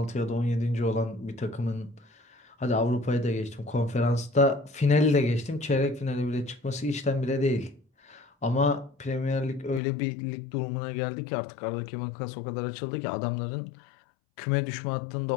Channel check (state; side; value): drops out; right; at 9.8 s